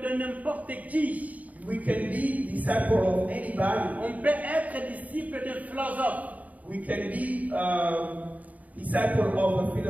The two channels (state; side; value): late; left; 0.072 ms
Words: de n'importe qui. We can be disciple of anybody. On peut être disciple d'un philosophe. We can be disciple of a